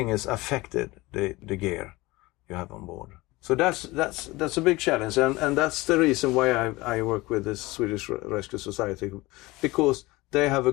is affected, the gear you have on board. So that's a big challenge, and that's the reason why I work with the Swedish Rescue Society, because they have a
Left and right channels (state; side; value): quieter; right; 21.2 dB